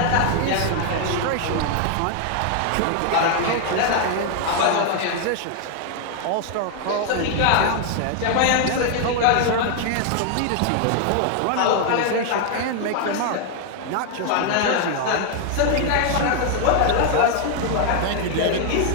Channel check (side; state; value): both; different; correlation 0.00